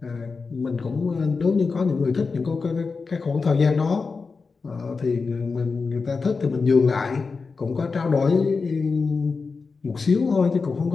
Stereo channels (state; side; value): quieter; right; 4.6 dB